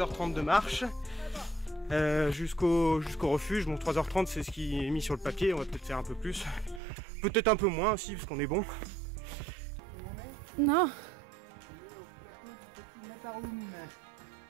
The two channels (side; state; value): left; drops out; at 6.8 s